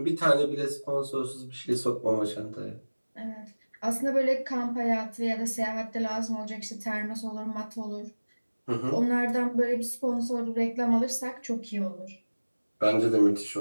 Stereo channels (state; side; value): inverted; both; correlation -1.00